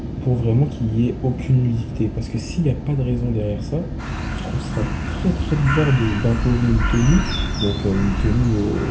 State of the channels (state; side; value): identical; both; correlation 1.00